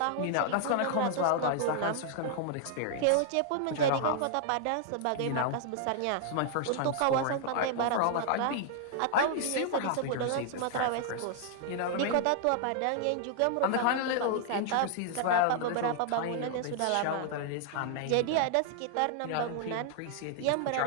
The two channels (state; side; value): different; both; correlation -0.01